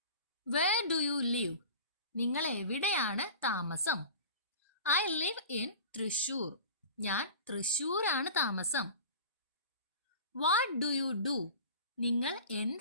Where do you live? നിങ്ങൾ എവിടെയാണ് താമസം? I live in Thrissur. ഞാൻ തൃശ്ശൂരാണ് താമസം. What do you do? നിങ്ങൾ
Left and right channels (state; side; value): inverted; both; correlation -0.37